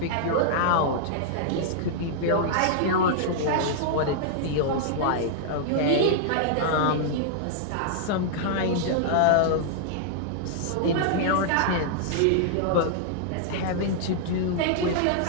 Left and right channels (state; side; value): different; both; correlation -0.01